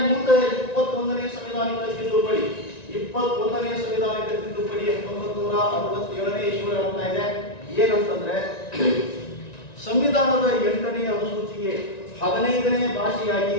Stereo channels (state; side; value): late; right; 1.9 ms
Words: ಮುಂದೆ 21ನೇ ಸಂವಿಧಾನಿಕ ತಿದ್ದುಪಡಿ, 21ನೇ ಸಂವಿಧಾನಿಕ ತಿದ್ದುಪಡಿ 1967ನೇ ಇಸ್ವಿಯೊಳಗೆ ಆಗ್ತಾ ಇದೆ. ಏನಂತಂದ್ರೆ ಸಂವಿಧಾನದ 8ನೇ ಅನುಸೂಚಿಗೆ 15ನೇ ಭಾಷೆಯಾಗಿ